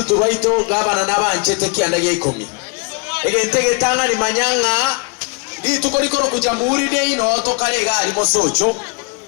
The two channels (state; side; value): quieter; right; 32.0 dB